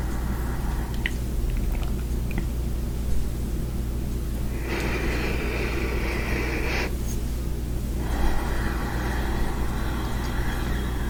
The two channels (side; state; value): both; identical; correlation 1.00